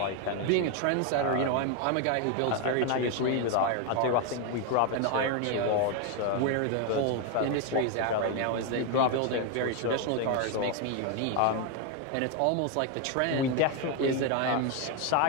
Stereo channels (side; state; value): both; different; correlation 0.01